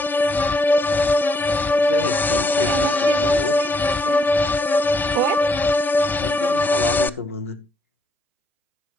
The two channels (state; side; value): normal; both; correlation 0.73